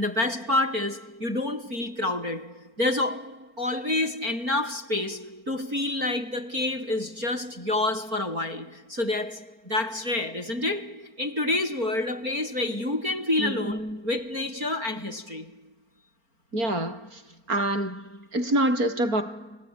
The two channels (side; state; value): left; late; 4.4 ms